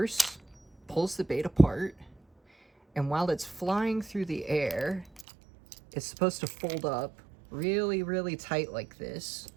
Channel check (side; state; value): left; drops out; at 5.2 s